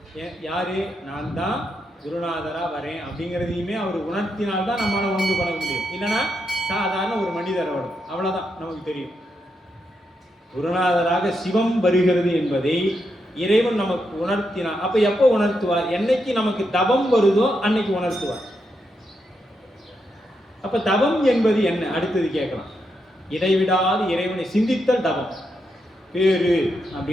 யாரு? நான் தான் குருநாதரா வரேன் அப்படிங்கிறதையுமே அவர் உணர்த்தினால்தான் நம்மளால உணர்ந்து பண்ண முடியும். இல்லைன்னா சாதாரண ஒரு மனிதர் வரும், அவ்வளவுதான் நமக்கு தெரியும். குருநாதராக சிவம் வருகிறது என்பதை இறைவன் நமக்கு உணர்த்தினார். அப்ப எப்போ உணர்த்துவார்? என்னைக்கு நமக்கு தபம் வருதோ அன்னைக்கு உணர்த்துவார். அப்ப தபம் என்பது என்ன? அடுத்தது கேட்கலாம். இடைவிடாது இறைவனை சிந்தித்தல் தபம். பேரு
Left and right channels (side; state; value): both; normal; correlation 0.83